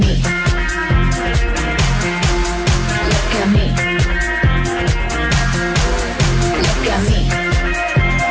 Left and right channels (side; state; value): both; identical; correlation 1.00